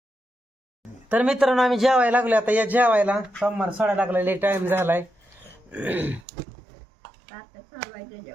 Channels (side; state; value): left; drops out; at 6.2 s